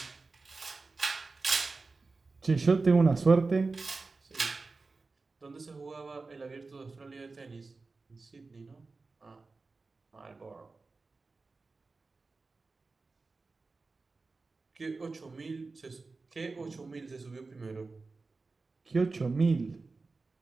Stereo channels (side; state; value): left; quieter; 3.9 dB